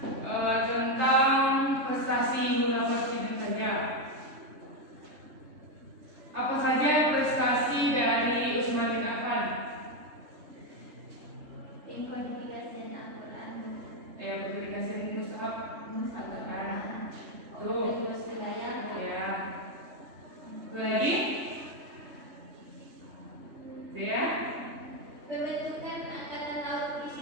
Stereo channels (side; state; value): left; late; 3.4 ms